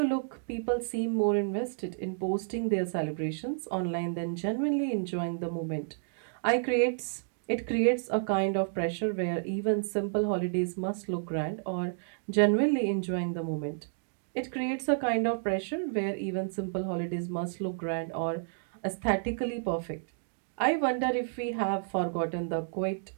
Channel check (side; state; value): left; silent; digital silence